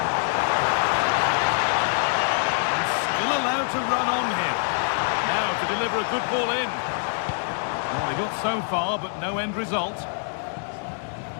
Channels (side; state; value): right; silent; digital silence